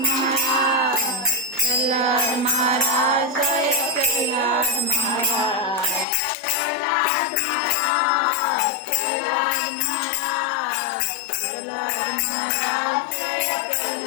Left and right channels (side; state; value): right; drops out; at 6.1 s